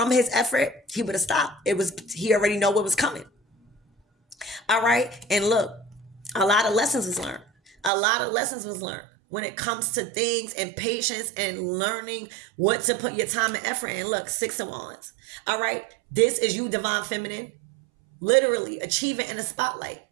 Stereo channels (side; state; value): left; drops out; at 7.9 s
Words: his effort, he would have stopped. He already know what was coming. All right. And look, a lot of lessons was learned. A lot of lessons was learned when it comes to things and patience and learning what to put your time and effort in. Look, 6 of Wands. All right. This is you, divine feminine, literally achieving in the spotlight.